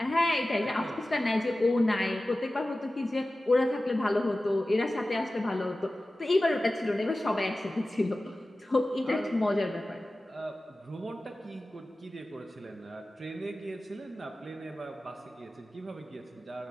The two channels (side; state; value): both; normal; correlation 0.96